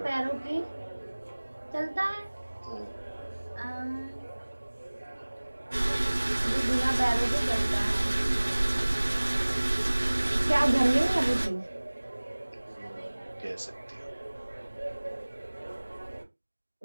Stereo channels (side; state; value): both; inverted; correlation -1.00